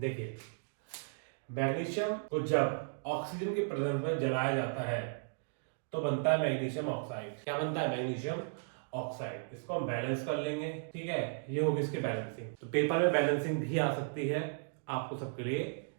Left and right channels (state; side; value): silent; left; digital silence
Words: मैग्नीशियम को जब ऑक्सीजन की प्रेजेंस में जलाया जाता है तो बनता है मैग्नीशियम ऑक्साइड। क्या बनता है? Magnesium oxide. इसको हम बैलेंस कर लेंगे। ठीक है, ये होगी इसकी बैलेंसिंग। तो पेपर में बैलेंसिंग भी आ सकती है, आपको सबके लिए